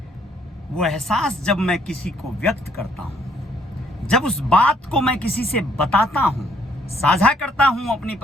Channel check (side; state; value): both; normal; correlation 0.67